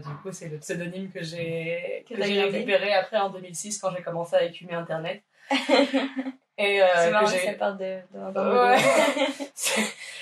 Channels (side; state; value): both; identical; correlation 1.00